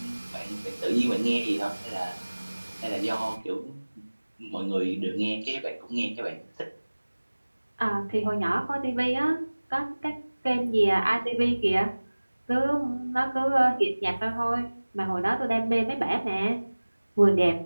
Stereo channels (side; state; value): both; inverted; correlation -1.00